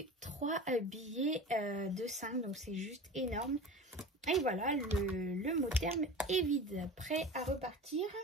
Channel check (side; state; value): both; normal; correlation 0.34